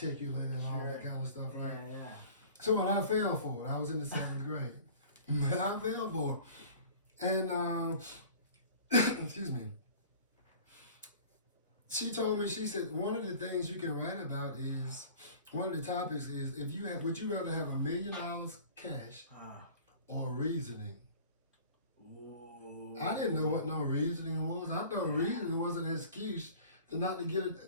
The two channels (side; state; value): both; inverted; correlation -0.44